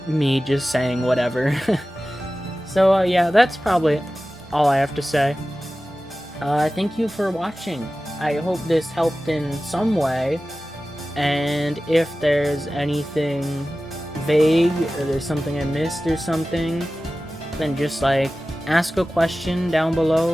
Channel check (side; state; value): both; normal; correlation 0.96